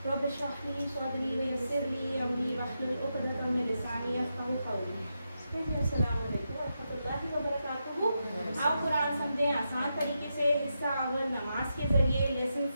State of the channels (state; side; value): inverted; both; correlation -0.86